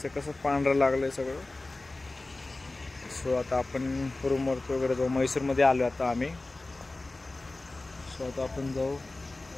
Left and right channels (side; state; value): right; quieter; 3.1 dB